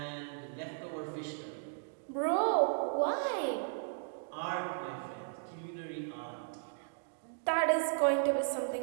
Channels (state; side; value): silent; left; digital silence